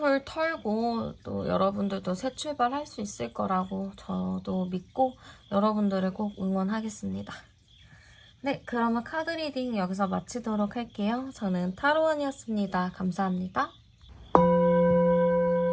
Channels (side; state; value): both; identical; correlation 1.00